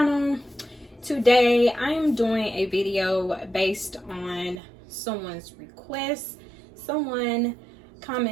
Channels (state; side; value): drops out; left; at 4.6 s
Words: Today I am doing a video based on someone's request. Someone